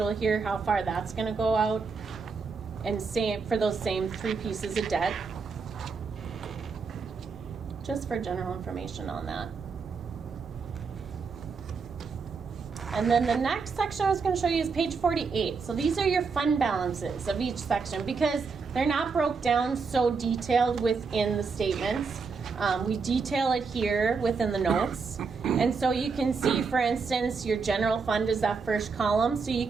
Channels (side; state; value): left; quieter; 5.0 dB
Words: here, how far that's going to go out. And same for those same 3 pieces of debt. Just for general information on that. And then the next section I was going to show you is page 48. So these are your fund balances of each section, because they're not broke down so detailed within the statements. We detail it here within the notes. And so you can see, for instance, your general fund is that first column. So you